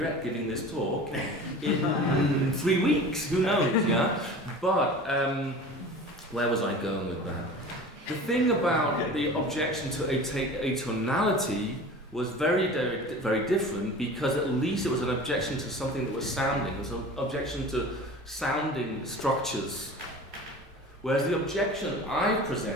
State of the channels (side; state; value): both; normal; correlation 0.38